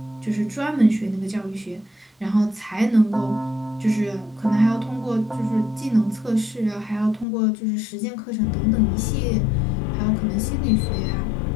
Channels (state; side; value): drops out; right; at 7.2 s